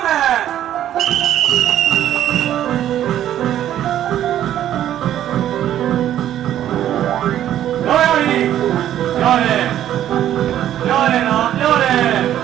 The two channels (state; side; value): quieter; left; 11.6 dB